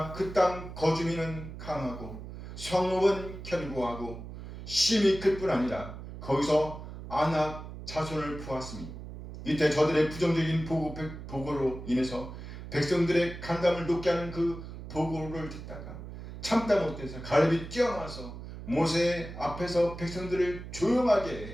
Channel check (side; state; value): right; noise; hum, 11 dB below the sound